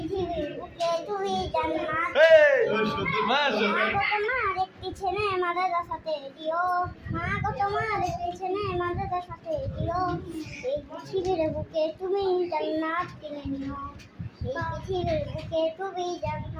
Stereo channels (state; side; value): identical; both; correlation 1.00